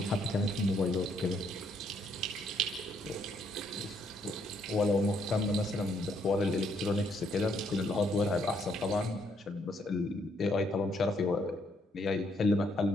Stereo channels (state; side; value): normal; both; correlation 0.71